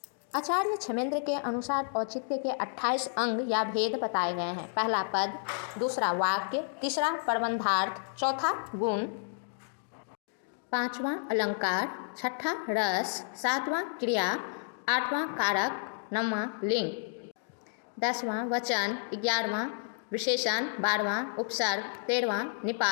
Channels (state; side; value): silent; right; digital silence